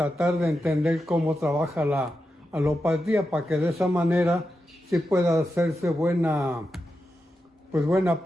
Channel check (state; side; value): normal; both; correlation 0.88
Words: de entender cómo trabaja la alopatía, para que de esa manera sí pueda hacerse buena